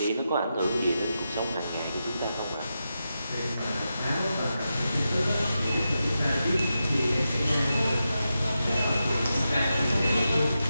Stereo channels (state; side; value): inverted; both; correlation -0.88